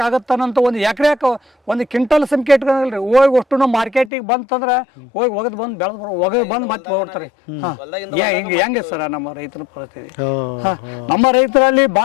ಆಗತ್ತನಂತ 1 ಎಕರೆಕ್ 1 ಕ್ವಿಂಟಲ್ ಸಂಖ್ಯೆ ಇಟ್ಕೊಂಡ್ರಿ. ಹೋಗಿ ಅಷ್ಟು ನಾವು ಮಾರ್ಕೆಟಿಗೆ ಬಂತಂದ್ರೆ ಒಗದ್ ಬಂದು ಒಗದ್ ಬಂದು ಮತ್ತೆ ಹೋಗ್ತಾರೆ. ಹೆಂಗೆ ಸರ್ ನಮ್ಮ ರೈತರ ಪರಿಸ್ಥಿತಿ? ನಮ್ಮ ರೈತರಲ್ಲಿ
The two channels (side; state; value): right; drops out; at 4.1 s